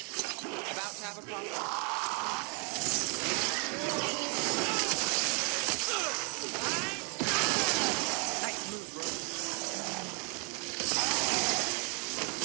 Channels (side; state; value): left; quieter; 36.0 dB